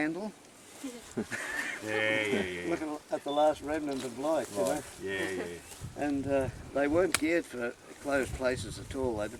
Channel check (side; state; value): both; identical; correlation 1.00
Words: Yeah. looking at the last remnant of light, you know. Yeah. And they weren't geared for closed places at all, they